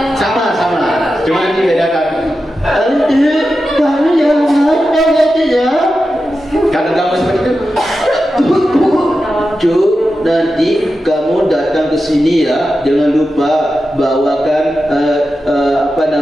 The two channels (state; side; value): normal; both; correlation 0.91